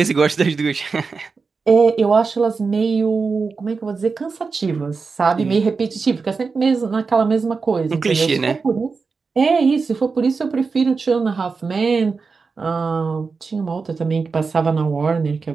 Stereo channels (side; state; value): left; quieter; 4.7 dB